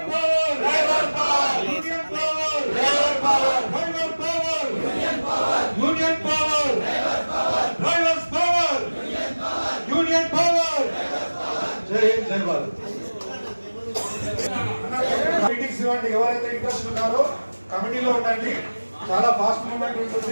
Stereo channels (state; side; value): inverted; both; correlation -1.00